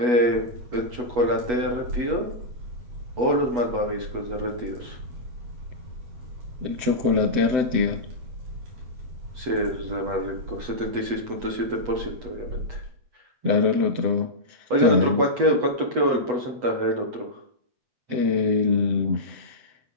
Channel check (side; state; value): left; late; 8.2 ms